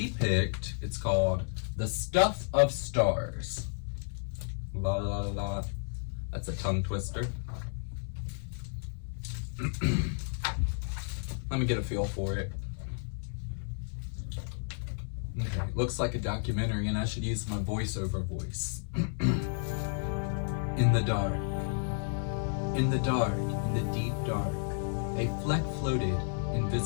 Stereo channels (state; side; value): silent; right; 56 dB below the other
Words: picked, it's called The Stuff of Stars. La la la. That's a tongue twister. Let me get a feel for it. Okay, looks like a documentary, and I should use my voiceover voice. In the dark, in the dark, in the deep dark, a fleck floated,